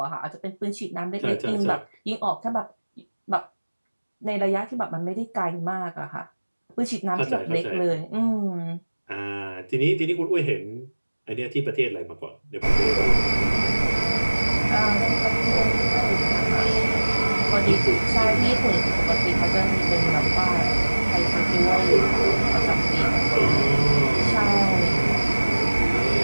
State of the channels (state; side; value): inverted; both; correlation -1.00